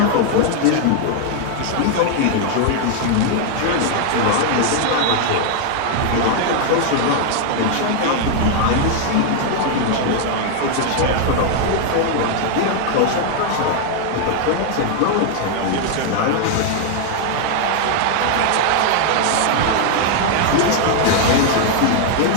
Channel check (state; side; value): different; both; correlation 0.00